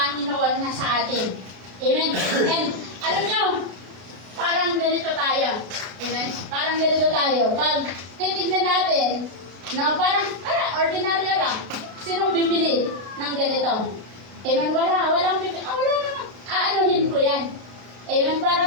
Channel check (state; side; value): late; left; 33 ms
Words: na sa atin. Amen? And alam niyo, parang ganito tayo. Amen? Parang ganito tayo. Pag titignan natin, no, parang ordinaryo lang. Sinong bibili ng ganito? Amen, walang bibili. Wala naman. Aanuhin ko yan. Amen,